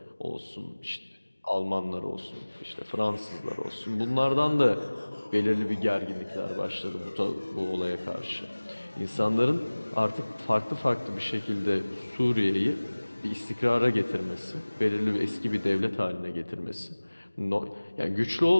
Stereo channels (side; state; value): both; inverted; correlation -1.00